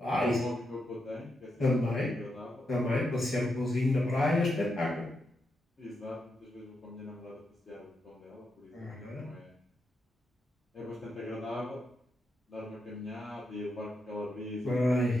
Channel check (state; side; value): normal; both; correlation 0.84